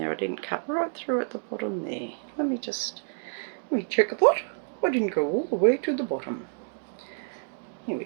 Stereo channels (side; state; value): left; silent; digital silence